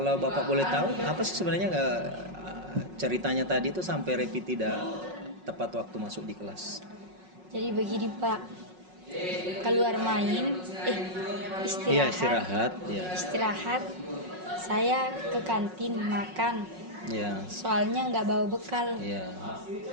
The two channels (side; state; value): left; late; 5.4 ms